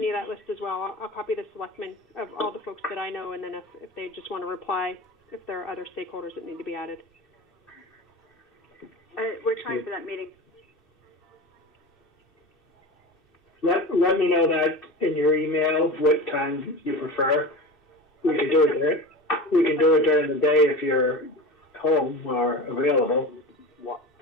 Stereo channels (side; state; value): both; normal; correlation 0.30